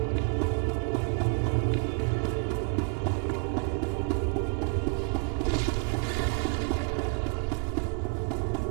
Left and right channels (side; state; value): left; quieter; 39.9 dB